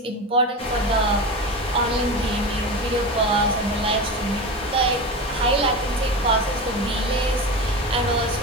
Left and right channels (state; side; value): normal; both; correlation 0.25